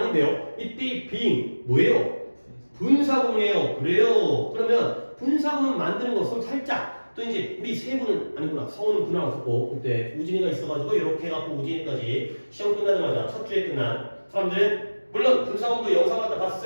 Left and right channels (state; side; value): inverted; both; correlation -1.00